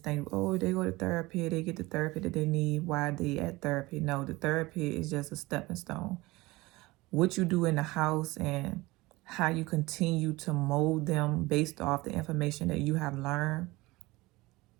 think, oh, they go to therapy, they get the therapy that they need. Why are they at therapy? No, the therapy is just a stepping stone. What you do in the house and how you continue to mold them based off the information that you have learned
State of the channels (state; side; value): quieter; left; 21.2 dB